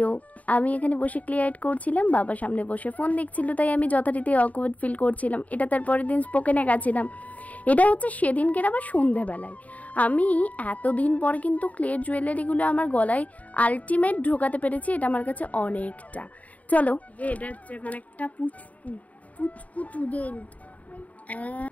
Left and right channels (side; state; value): right; late; 0.071 ms